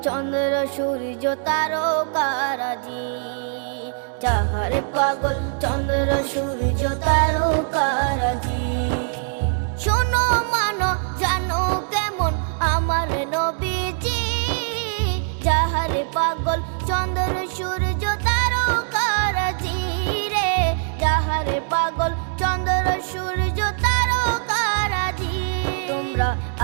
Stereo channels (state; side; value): silent; left; 62 dB below the other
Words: চন্দ্র সূর্য তারকারাজি, যাহার পাগল চন্দ্র সূর্য তারকারাজি। শোনো মানো জানো কেমন আমার নবীজি, যাহার পাগল চন্দ্র সূর্য তারকারাজি রে, যাহার পাগল চন্দ্র সূর্য তারকারাজি। তোমরা